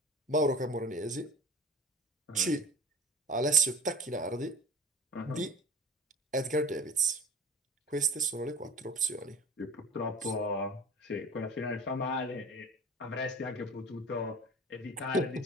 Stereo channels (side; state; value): both; normal; correlation 0.39